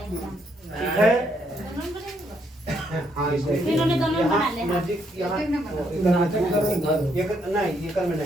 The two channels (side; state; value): both; normal; correlation 0.73